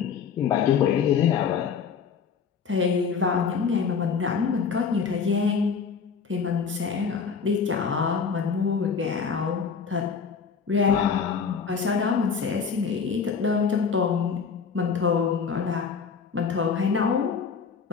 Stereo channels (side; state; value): right; quieter; 6.0 dB